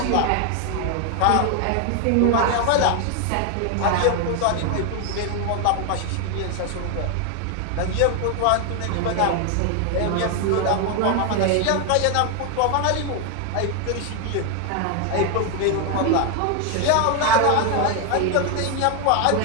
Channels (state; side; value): different; both; correlation 0.01